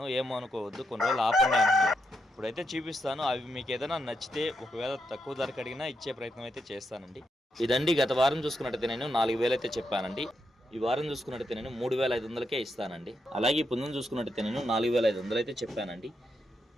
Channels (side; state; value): both; normal; correlation 0.83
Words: ఏమో అనుకోవద్దు, కొన్ని రోజులు ఆపండి అంటున్నారు. ఇప్పుడైతే చూపిస్తాను. అవి మీకు ఏదైనా నచ్చితే ఒకవేళ తక్కువ ధరకు అడిగినా ఇచ్చే ప్రయత్నం అయితే చేస్తానండి. ఇదండి గత వారం చూసుకున్నట్టయితే నేను 4,000 అయితే చెప్పానండి. ఈ వారం చూసుకున్నట్టయితే నేను 3,500కే ఇస్తానండి. అలాగే ఈ పుంజును చూసుకున్నట్టయితే నేను 4,500 అయితే చెప్పానండి.